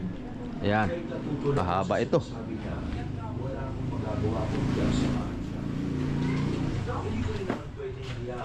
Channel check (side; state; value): both; identical; correlation 1.00